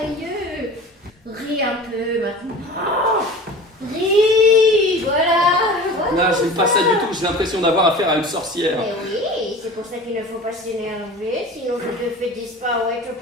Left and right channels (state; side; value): normal; both; correlation 0.38